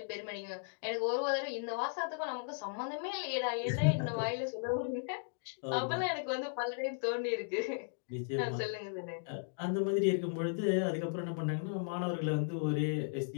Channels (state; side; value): silent; right; digital silence